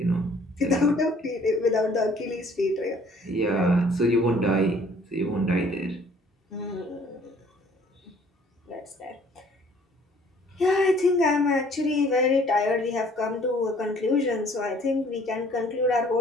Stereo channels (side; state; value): both; normal; correlation 0.57